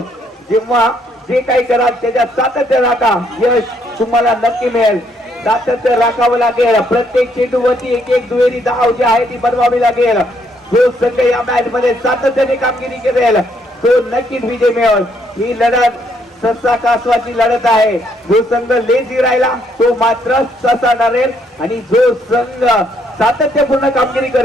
जेव्हा जे काही कराल त्याच्या सातत्य राखा, यश तुम्हाला नक्की मिळेल. सातत्य राखावं लागेल. प्रत्येक चेंडूवरती एक दुहेरी धाव जी आहे ती बनवावी लागेल. जो संघ या मॅच मध्ये सातत्याने कामगिरी करेल तो नक्कीच विजय मिळेल. ही लढत ससा कासवाची लढत आहे. जो संघ लेझी राहिला तो मात्र ससा ठरेल आणि जो संघ सातत्यपूर्ण कामगिरी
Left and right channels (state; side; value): normal; both; correlation 0.71